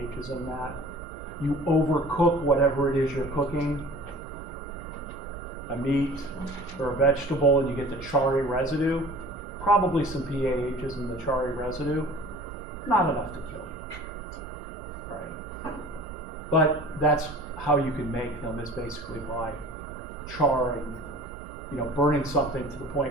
in that. You overcook whatever it is you're cooking, a meat or a vegetable, and you get the charry residue, probably some PAHs in the charry residue. not enough to kill you, right? But that's how you can make them, is basically by charring, burning something to the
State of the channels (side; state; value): both; normal; correlation 0.44